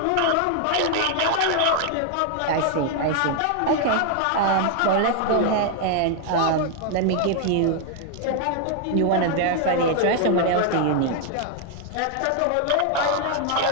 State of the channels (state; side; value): different; both; correlation 0.00